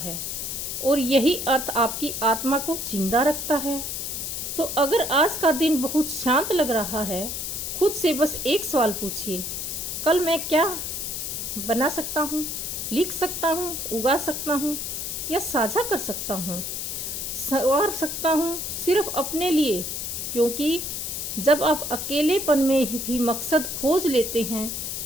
और यही अर्थ आपकी आत्मा को जिंदा रखता है। तो अगर आज का दिन बहुत शांत लग रहा है, खुद से बस एक सवाल पूछिए, कल मैं क्या बना सकता हूँ, लिख सकता हूँ, उगा सकता हूँ या साझा कर सकता हूँ, संवार सकता हूँ सिर्फ अपने लिए। क्योंकि जब आप अकेलेपन में भी मकसद खोज लेते हैं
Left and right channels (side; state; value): left; noise; hiss, 4 dB below the sound